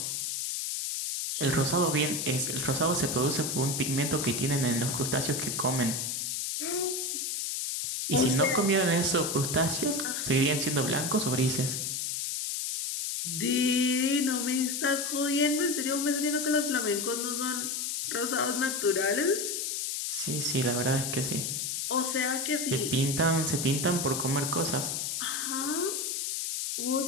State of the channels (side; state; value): left; noise; hiss, 2 dB below the sound